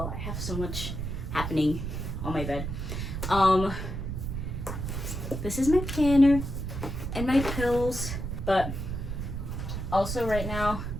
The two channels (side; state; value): right; noise; rumble, 4 dB below the sound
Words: I have so much happening on my bed. This is my planner and my pills. But also right now,